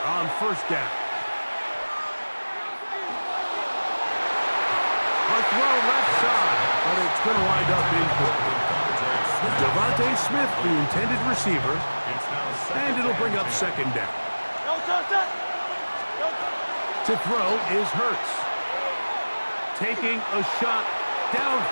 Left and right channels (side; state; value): both; inverted; correlation -1.00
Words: on 1st down. A throw left side, but it's going to wind up incomplete. Devontae Smith, the intended receiver, and it'll bring up 2nd down. To throw is Hurts. Taking a shot